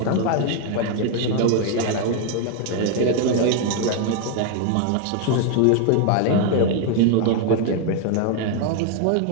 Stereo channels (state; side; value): different; both; correlation 0.00